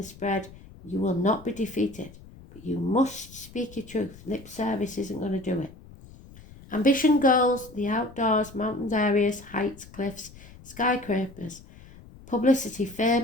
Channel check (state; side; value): noise; left; rumble, 20 dB below the sound